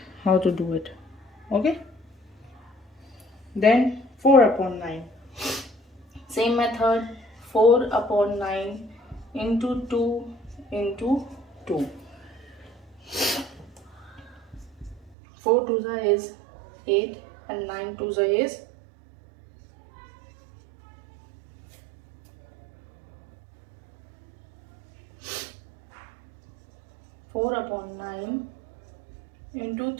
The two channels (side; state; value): left; drops out; at 15.1 s